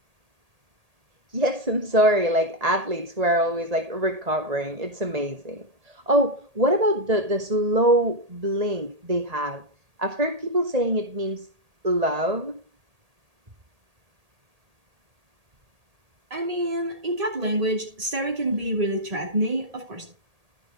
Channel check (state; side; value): late; left; 1.8 ms